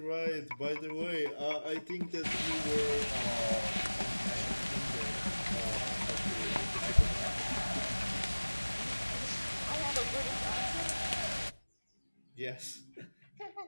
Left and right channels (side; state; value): both; inverted; correlation -1.00